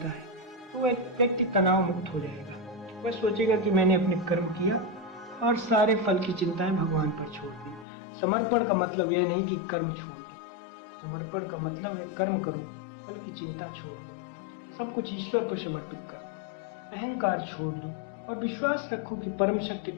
है, तो वह व्यक्ति तनाव मुक्त हो जाएगा। वह सोचेगा कि मैंने अपने कर्म किया और सारे फल की चिंताएं भगवान पर छोड़ दी। समर्पण का मतलब यह नहीं कि कर्म छोड़ दो, समर्पण का मतलब है कर्म करो, फल की चिंता छोड़ दो, सब कुछ ईश्वर को समर्पित कर दो, अहंकार छोड़ दो, और विश्वास रखो कि परम शक्ति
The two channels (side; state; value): right; drops out; at 7.9 s